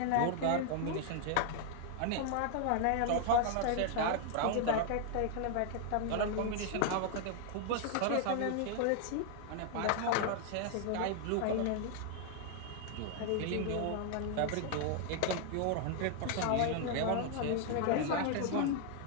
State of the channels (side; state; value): both; different; correlation 0.00